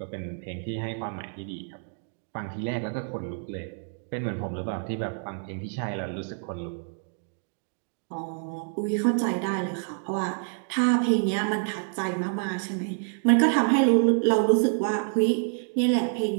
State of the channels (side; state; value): left; silent; 60 dB below the other